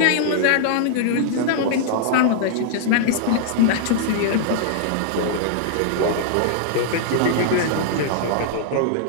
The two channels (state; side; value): different; both; correlation -0.01